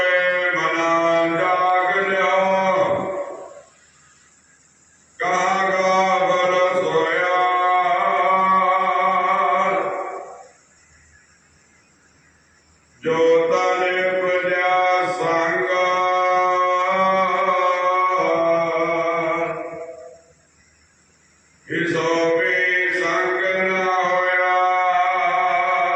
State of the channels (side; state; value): both; identical; correlation 1.00